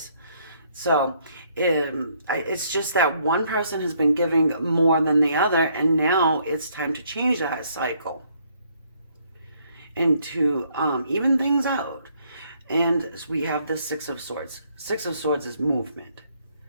So it's just that one person has been giving more than the other, and now it's time to change that cycle and to even things out. And we have the Six of Swords. Six of Swords is movement.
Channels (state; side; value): inverted; both; correlation -0.68